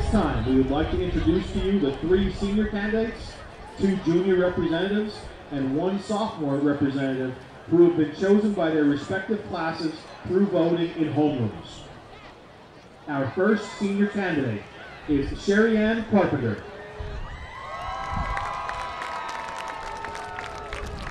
time, we would like to introduce to you the 3 senior candidates, 2 junior representatives, and 1 sophomore representative who have been chosen by their respective classes through voting in homerooms. Our first senior candidate is Sherry Ann Carpenter.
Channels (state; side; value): identical; both; correlation 1.00